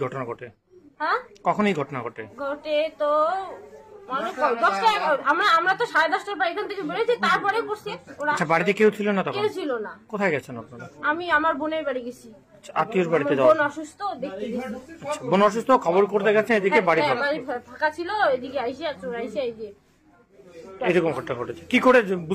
ঘটনা ঘটে? হ্যাঁ, কখন এই ঘটনা ঘটে? তো আমরা তো 10:30টার পর এখান থেকে বেরোচ্ছি, তারপরে করছে ওরা। আচ্ছা, বাড়িতে কেউ ছিল না তখন? কেউ ছিল না। কোথায় গেছেন আপনারা? আমি আমার বোনের বাড়ি গেছি। আত্মীয়র বাড়িতে? বোন অসুস্থ, দেখতে গেছি। বোন অসুস্থ, খবর করতে গেছে, এদিকে বাড়ি ফাঁকা ছিল, এদিকে আইসে চোর আইসে এই যে এরকম ঘটনা ঘটেছে। কি করে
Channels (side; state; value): both; identical; correlation 1.00